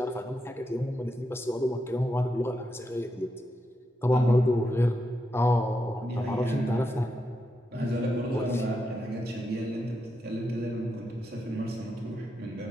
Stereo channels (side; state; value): both; normal; correlation 0.85